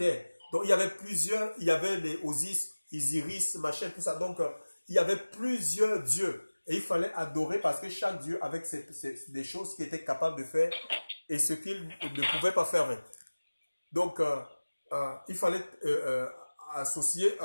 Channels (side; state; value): both; inverted; correlation -1.00